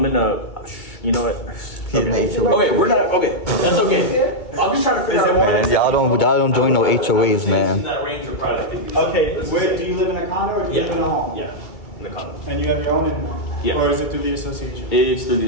a. You know what? Okay. Okay, we're not. Okay, that's okay. I'm just trying to figure out. Man, y'all don't join no HOAs, In man. that range of probably like 50 Okay, where, do you live in a condo or do you live in a home? Yeah, in the condo. And you have your own internet? Yeah. Or is it through the association? It's through the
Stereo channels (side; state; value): right; late; 2.2 ms